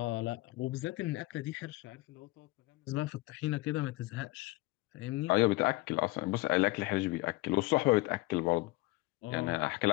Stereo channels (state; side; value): quieter; right; 21.1 dB